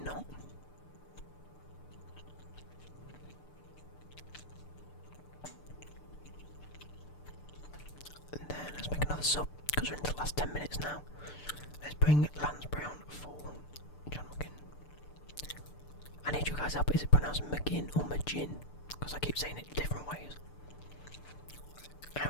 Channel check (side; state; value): right; late; 6.8 ms